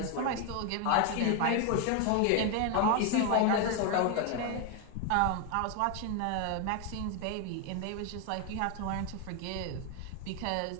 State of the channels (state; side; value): different; both; correlation 0.01